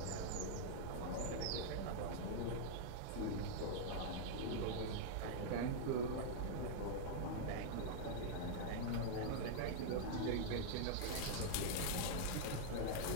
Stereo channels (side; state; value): both; different; correlation -0.01